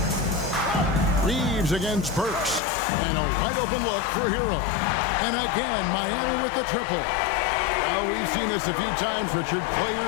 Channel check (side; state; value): right; drops out; at 2.6 s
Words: Reeves against Burks, and a wide open look for Hero. And again, Miami with the triple. Well, we've seen this a few times, Richard.